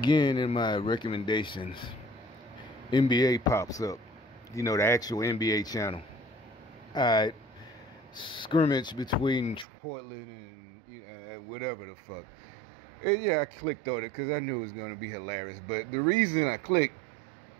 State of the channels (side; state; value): left; drops out; at 9.7 s